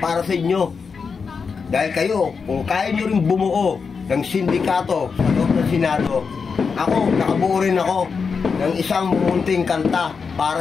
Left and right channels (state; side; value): quieter; right; 5.4 dB